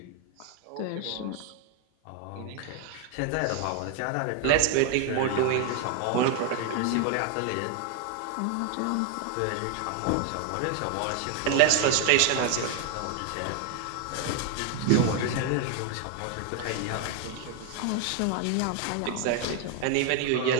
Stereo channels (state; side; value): different; both; correlation 0.01